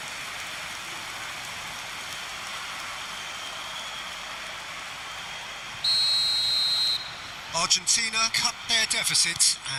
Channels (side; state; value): left; noise; hum, 25 dB below the sound